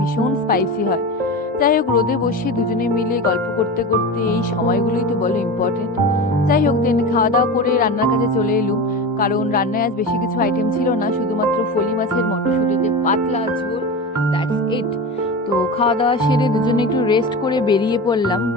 স্পাইসি হয়। যাই হোক, রোদে বসে দুজনে মিলে গল্প করতে করতে এই সময়গুলোই তো বলো ইম্পর্টেন্ট। যাই হোক, দেন খাওয়া দাওয়া করে রান্নার কাজে চলে এলুম, কারণ রান্নায় আজ বেশি কিছু আইটেম ছিল না, শুধুমাত্র ফলি মাছের মটরশুঁটি দিয়ে পাতলা ঝোল, দ্যাটস ইট। তো খাওয়া দাওয়া সেরে দুজনে একটু রেস্ট করে বেরিয়ে পড়লাম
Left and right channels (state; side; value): normal; both; correlation 0.27